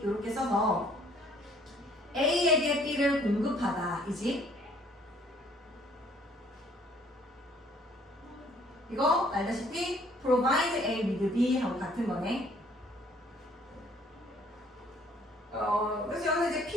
이렇게 써서 A에게 B를 공급하다 이지. 이거 알다시피 provide A with B 하고 같은 거네. 그래서 여기서 이제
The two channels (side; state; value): both; normal; correlation 0.60